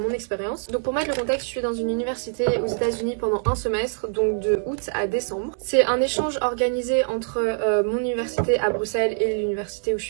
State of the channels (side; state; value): left; silent; 62 dB below the other